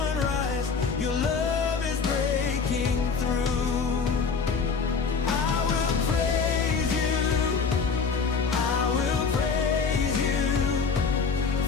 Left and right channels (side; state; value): right; quieter; 5.3 dB